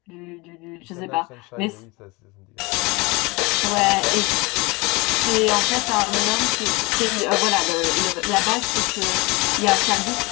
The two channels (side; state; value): right; quieter; 25.0 dB